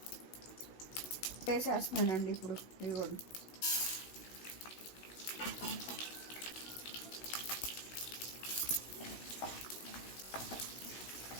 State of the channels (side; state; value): right; late; 16 ms